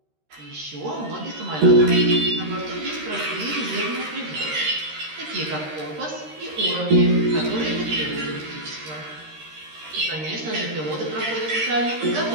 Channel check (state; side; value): late; left; 13 ms